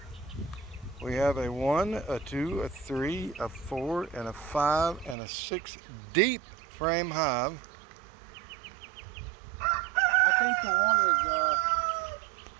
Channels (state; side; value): drops out; left; at 5.2 s